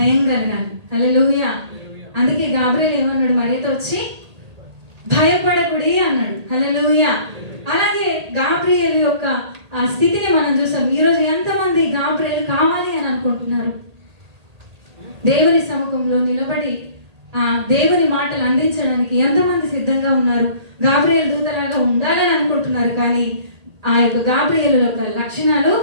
కలగాలి. హల్లెలూయా. అందుకే గాబ్రియల్ ఏమన్నాడు? మరియతో వచ్చి భయపడకుడి అన్నాడు. హల్లెలూయా. అలాగే గాబ్రియల్ యొక్క ఆ స్థితిని మనం చూసాం. ఈరోజు ఎంతమంది గాబ్రియల్ కావాలి అని అనుకుంటున్నారు? దేవుని సముఖంలో నిలబడి ఆ దేవుని మాటలు అందించడానికి ఎంతమంది సిద్ధంగా ఉన్నారు? గాబ్రియల్ దూతలాగా ఉండాలని అనుకుంటున్నారు, కానీ ఆ యొక్క గాబ్రియల్ యొక్క లక్షణాలు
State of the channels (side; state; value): left; late; 1.8 ms